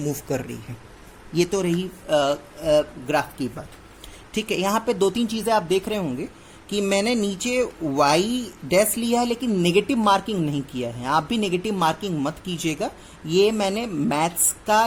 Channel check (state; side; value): identical; both; correlation 1.00